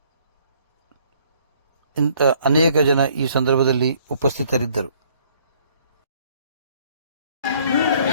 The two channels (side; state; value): both; inverted; correlation -0.61